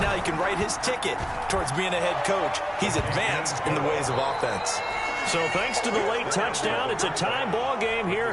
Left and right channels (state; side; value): identical; both; correlation 1.00